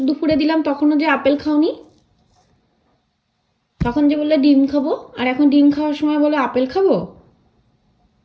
দুপুরে দিলাম, তখনও যে আপেল খাওনি। তখন যে বললে ডিম খাবো, আর এখন ডিম খাওয়ার সময় বলে আপেল খাবো।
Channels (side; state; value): both; identical; correlation 1.00